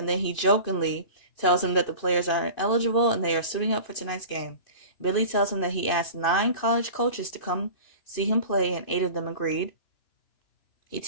then he jokingly tells him that the players are eligible and they are suiting up for tonight's game. Billy tells him that he asked 9 college coaches to come see him play and 8 of them agreed. He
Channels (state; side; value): late; right; 2.5 ms